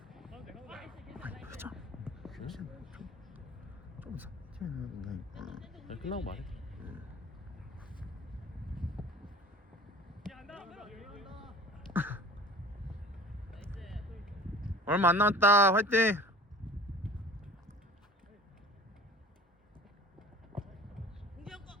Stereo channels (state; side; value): normal; both; correlation 0.44